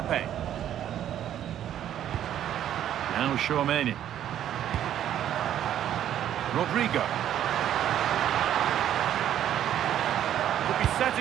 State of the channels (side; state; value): left; quieter; 10.9 dB